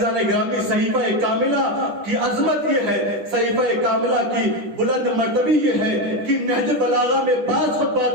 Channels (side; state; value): left; late; 9.9 ms